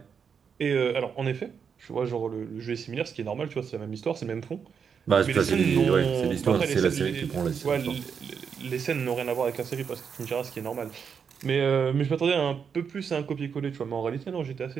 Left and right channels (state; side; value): quieter; left; 6.7 dB